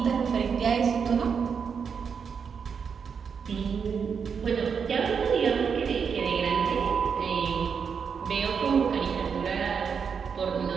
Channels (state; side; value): quieter; left; 6.4 dB